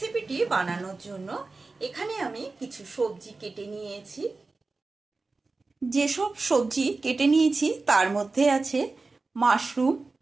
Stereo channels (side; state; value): left; quieter; 3.7 dB